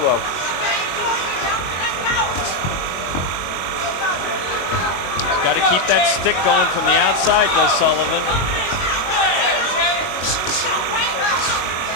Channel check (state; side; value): late; right; 22 ms